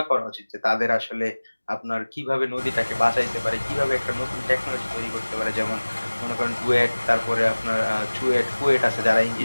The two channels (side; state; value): both; inverted; correlation -1.00